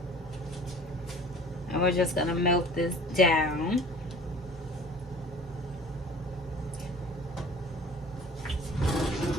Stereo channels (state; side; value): normal; both; correlation 0.46